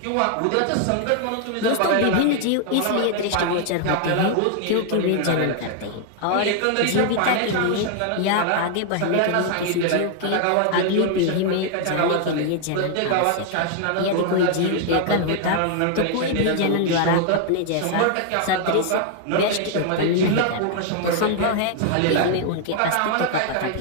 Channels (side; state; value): both; different; correlation 0.00